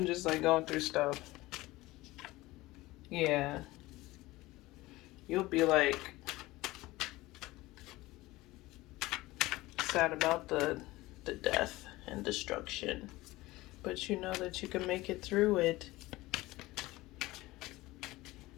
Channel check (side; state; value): right; quieter; 19.2 dB